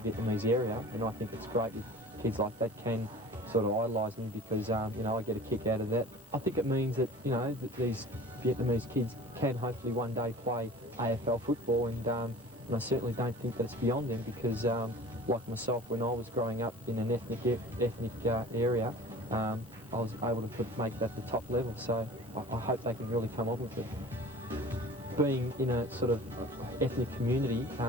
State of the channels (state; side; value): normal; both; correlation 0.42